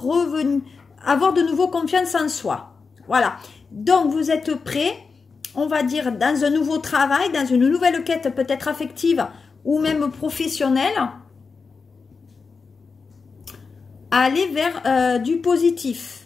avoir de nouveau confiance en soi. Voilà. Donc, vous êtes prêts, on va dire, dans un nouveau travail, dans une nouvelle quête peut-être affective ou même professionnelle, à aller vers du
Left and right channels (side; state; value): right; quieter; 4.8 dB